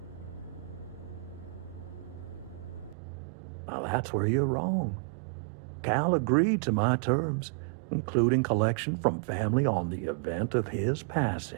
Now that's where you're wrong. Cal agreed to my terms, including collection from family on the event of his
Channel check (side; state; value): left; drops out; at 3.0 s